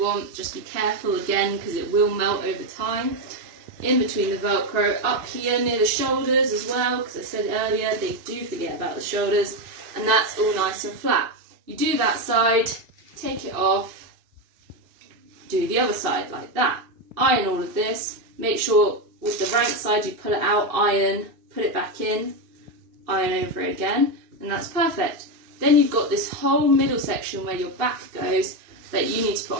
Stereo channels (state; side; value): late; left; 2.6 ms